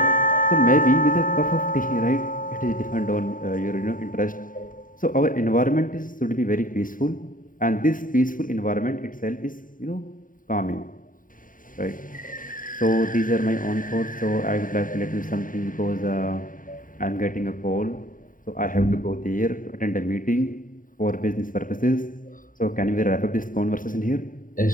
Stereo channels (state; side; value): late; right; 0.39 ms